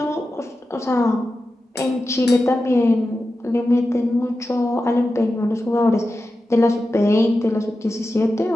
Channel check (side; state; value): both; normal; correlation 0.92